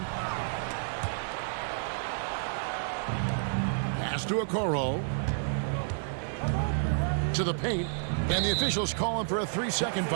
Pass to Okoro. To the paint. And the officials call him for a 3-second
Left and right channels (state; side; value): silent; left; 56 dB below the other